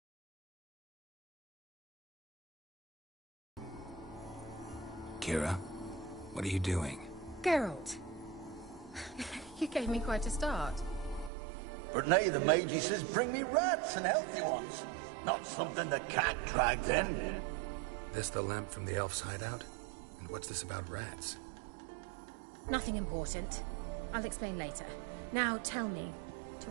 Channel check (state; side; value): drops out; left; at 11.3 s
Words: Kira, what are you doing? Geralt. You gave me quite a start. But now the Magi says bring me rats and healthy ones. Not something the cat dragged in. This the lamp from the elf's hideout? And what's this about rats? Nothing important. I'll explain later. Now tell me, to